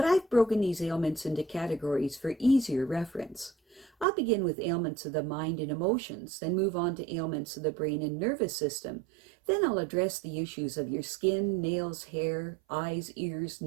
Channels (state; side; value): drops out; left; at 4.0 s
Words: I've broken these ailments into categories for easier reference. I'll begin with ailments of the mind and emotions, then move on to ailments of the brain and nervous system. Then I'll address the issues of your skin, nails, hair, eyes, ears,